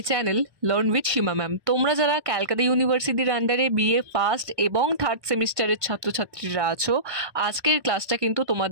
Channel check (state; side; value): late; left; 1.2 ms